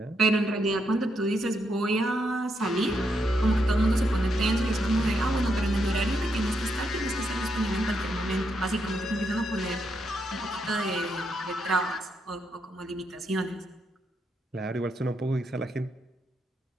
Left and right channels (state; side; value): normal; both; correlation 0.79